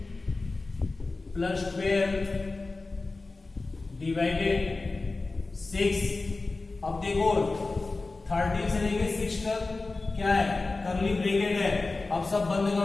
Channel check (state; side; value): quieter; right; 3.5 dB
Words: प्लस 12 डिवाइडेड 6। अब देखो 13 से लेके 6 तक क्या है, करली ब्रैकेट है। अब सब बंद